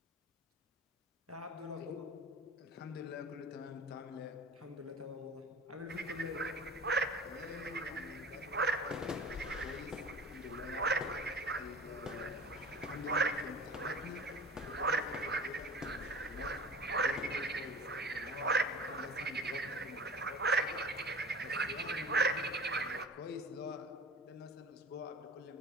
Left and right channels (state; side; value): normal; both; correlation 0.41